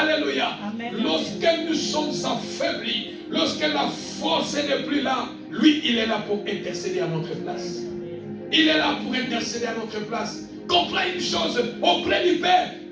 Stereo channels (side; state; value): both; identical; correlation 1.00